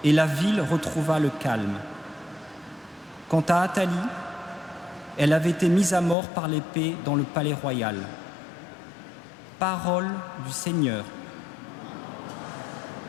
et la ville retrouva le calme. Quant à Athalie, elle avait été mise à mort par l'épée dans le palais royal. Parole du Seigneur.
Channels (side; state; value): right; drops out; at 6.2 s